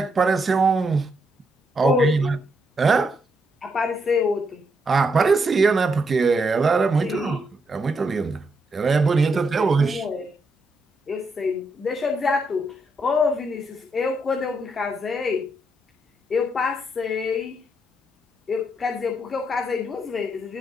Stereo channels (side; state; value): both; normal; correlation 0.79